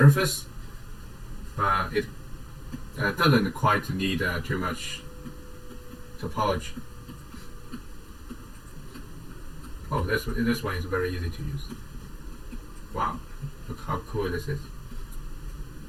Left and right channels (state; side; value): identical; both; correlation 1.00